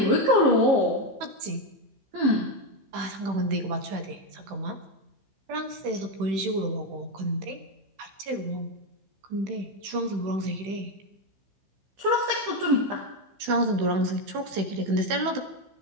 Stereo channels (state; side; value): late; left; 15 ms